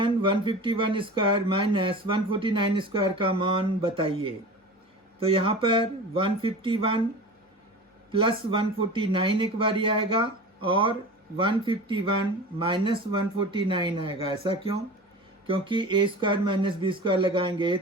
151 square minus 149 square का मान बताइए। तो यहाँ पर 151 प्लस 149 एक बार आएगा और 151 माइनस 149 आएगा। ऐसा क्यों, क्योंकि A square minus B square लगाएंगे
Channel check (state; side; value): normal; both; correlation 0.34